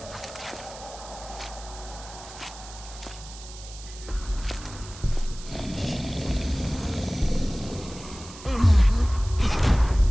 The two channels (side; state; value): right; noise; hiss, 16 dB below the sound